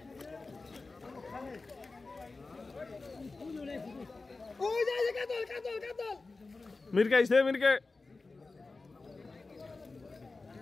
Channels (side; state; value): right; quieter; 3.7 dB